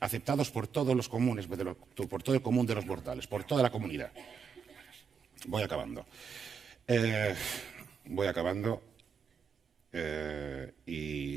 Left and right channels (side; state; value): left; quieter; 6.3 dB